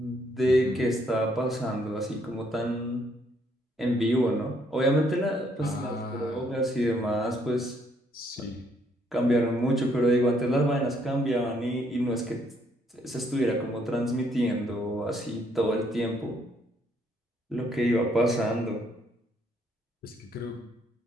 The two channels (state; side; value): normal; both; correlation 0.69